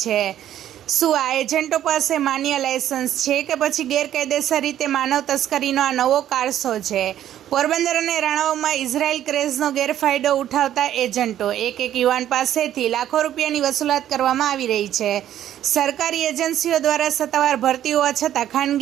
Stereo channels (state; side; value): quieter; left; 11.5 dB